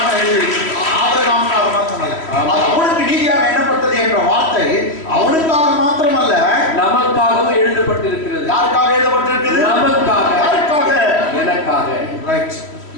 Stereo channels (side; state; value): right; late; 3.1 ms